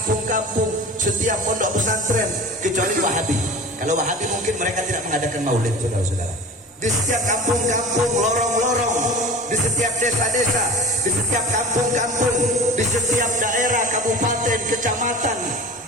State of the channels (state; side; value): normal; both; correlation 0.37